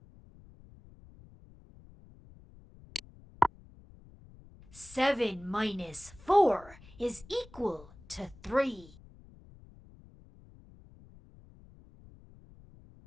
7 minus 4 is equal to 3.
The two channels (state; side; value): noise; left; rumble, 22 dB below the sound